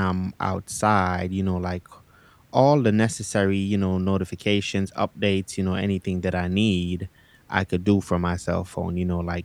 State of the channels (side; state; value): both; identical; correlation 1.00